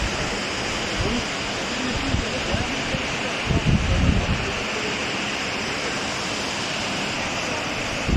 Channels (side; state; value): both; identical; correlation 1.00